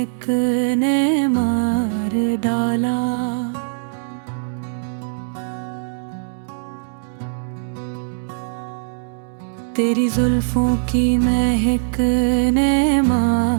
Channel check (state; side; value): silent; left; digital silence